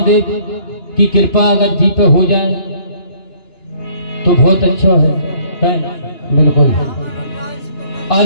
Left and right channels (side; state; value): right; late; 2.9 ms